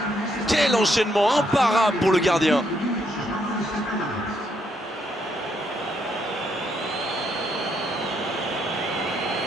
Quel enchaînement imparable pour le gardien.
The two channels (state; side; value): normal; both; correlation 0.75